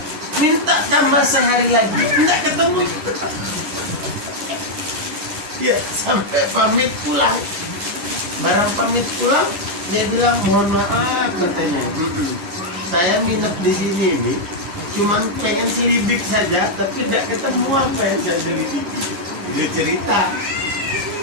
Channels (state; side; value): late; left; 9.8 ms